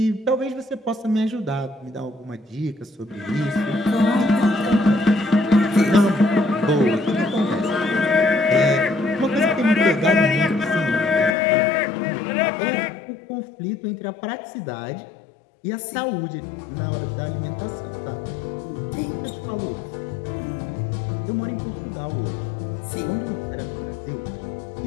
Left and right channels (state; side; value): drops out; right; at 11.4 s